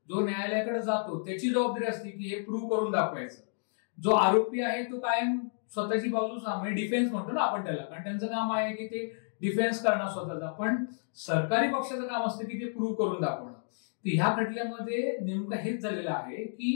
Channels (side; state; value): right; silent; digital silence